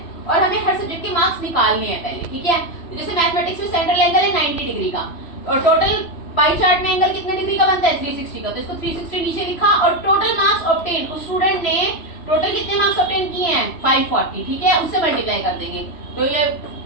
और हमें हर सब्जेक्ट के मार्क्स निकालने हैं पहले। ठीक है, तो जैसे मैथमेटिक्स में सेंट्रल एंगल है 90 डिग्री का और टोटल पाई चार्ट में एंगल कितने डिग्री का बनता है 360 का, तो इसको 360 नीचे लिखा और टोटल मार्क्स ऑब्टेन, उस स्टूडेंट ने टोटल कितने मार्क्स ऑब्टेन किए हैं 540। ठीक है, उससे मल्टीप्लाई कर देंगे, तो ये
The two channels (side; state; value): right; late; 3.0 ms